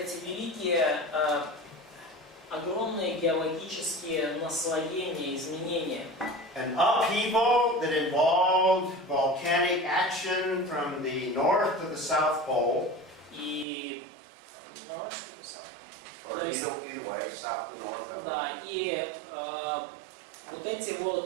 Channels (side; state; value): left; drops out; at 13.7 s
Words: великие, огромные геологические наслоения, изменения. An upheaval that involved volcanic action from the north to the south pole, И or either way, south to north. да, и вот эти